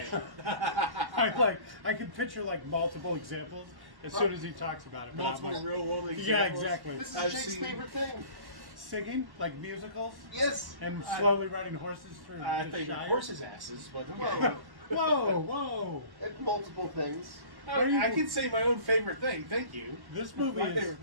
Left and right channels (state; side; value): late; left; 1.1 ms